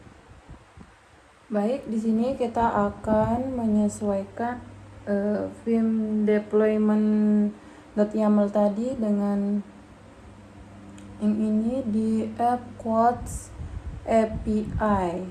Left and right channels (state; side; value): identical; both; correlation 1.00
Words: Baik, di sini kita akan menyesuaikan vim deployment.yaml tadi dengan yang ini di app Codes API.